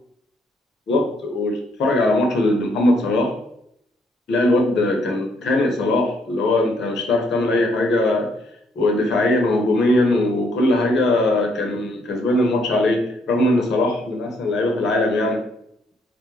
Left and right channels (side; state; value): both; normal; correlation 0.70